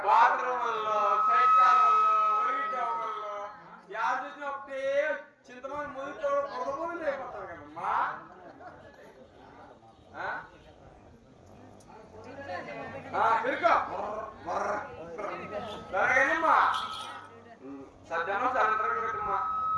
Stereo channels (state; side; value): identical; both; correlation 1.00